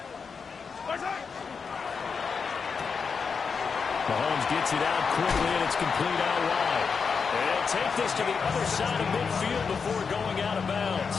Mahomes gets it out quickly, and it's complete out wide. And they'll take this to the other side of midfield before going out of bounds.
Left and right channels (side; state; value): right; quieter; 5.6 dB